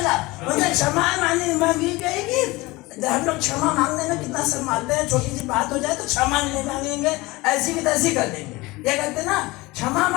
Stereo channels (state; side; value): quieter; right; 21.8 dB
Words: उनसे क्षमा मांगी गई कि हम लोग क्षमा मांगने में कितना शर्माते हैं। छोटी सी बात हो जाए तो क्षमा नहीं मांगेंगे, ऐसी की तैसी कर देंगे। ये कहते ना, क्षमा